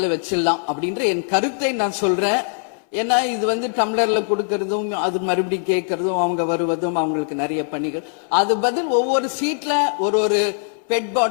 வச்சிடலாம் அப்படின்ற என் கருத்தை நான் சொல்றேன். ஏன்னா இது வந்து டம்ளர்ல கொடுக்கறதும் அது மறுபடியும் கேட்கறதும் அவங்க வருவதும் அவங்களுக்கு நிறைய பணிகள். அது பதில் ஒவ்வொரு சீட்ல ஒரு பெட்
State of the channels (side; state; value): right; silent; 63 dB below the other